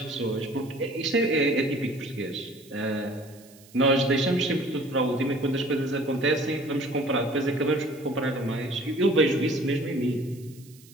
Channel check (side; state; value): right; noise; hiss, 25 dB below the sound